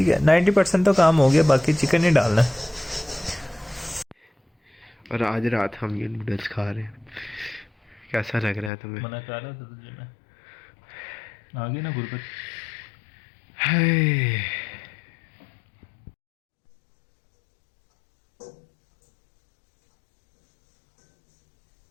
है, 90% तो काम हो गया, बाकी चिकन ही डालना। और आज रात हम ये नूडल्स खा रहे हैं। कैसा लग रहा है तुम्हें? मना कर रहा था तुझे मैं, आ गई ना गुरबत। हाय।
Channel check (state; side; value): drops out; right; at 8.7 s